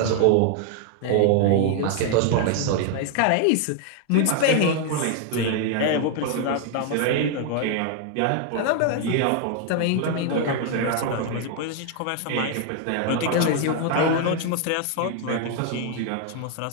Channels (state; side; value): different; both; correlation 0.00